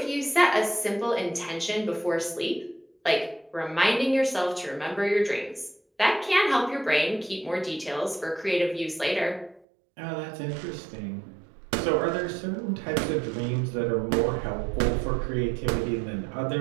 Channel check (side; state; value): left; drops out; at 9.7 s